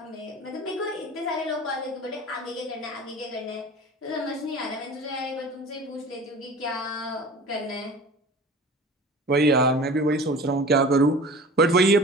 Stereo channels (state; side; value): normal; both; correlation 0.40